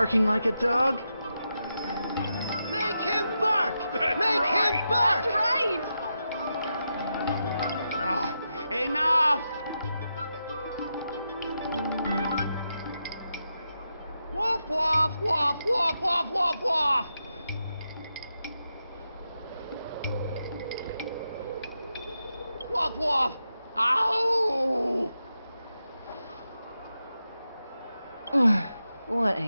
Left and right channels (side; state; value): both; inverted; correlation -0.87